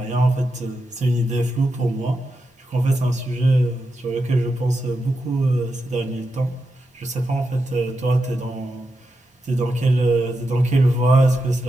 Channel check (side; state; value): both; normal; correlation 0.87